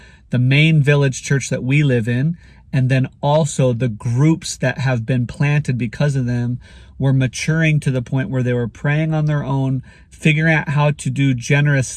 the main village church that we live in, and then also the groups that have been planted because of them, were maturing to the point where they were praying on their own, figuring out how to do generous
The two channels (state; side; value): identical; both; correlation 1.00